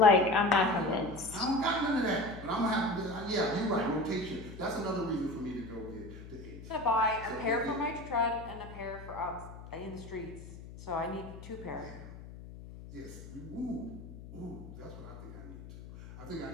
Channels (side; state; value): left; noise; hum, 14 dB below the sound